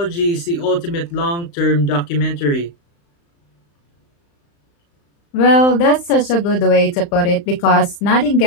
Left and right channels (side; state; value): right; late; 35 ms